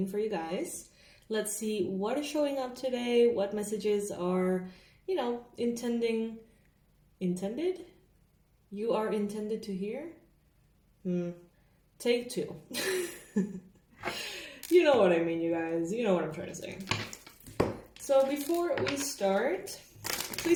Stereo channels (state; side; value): identical; both; correlation 1.00